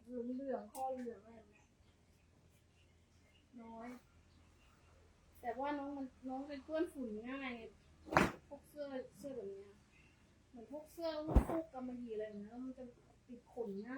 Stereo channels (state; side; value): identical; both; correlation 1.00